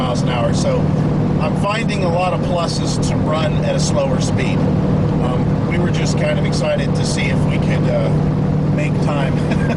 an hour. So I'm finding a lot of pluses to run at a slower speed. We were just kind of excited to see if we could make time. I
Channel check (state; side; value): identical; both; correlation 1.00